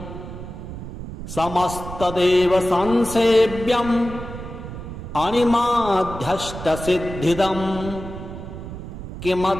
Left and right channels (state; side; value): noise; right; rumble, 10 dB below the sound